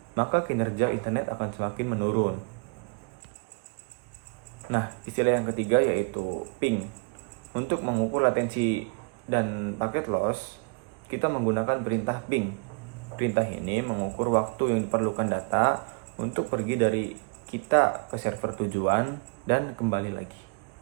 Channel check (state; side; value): quieter; left; 33.5 dB